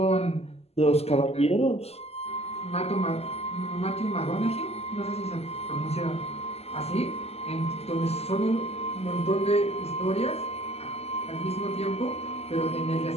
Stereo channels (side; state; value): right; late; 0.30 ms